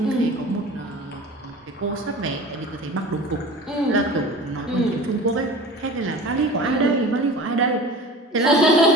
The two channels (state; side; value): normal; both; correlation 0.38